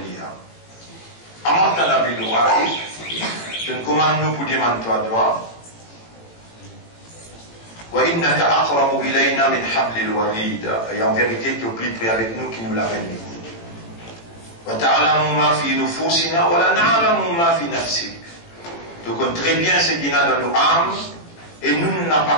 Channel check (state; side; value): late; right; 18 ms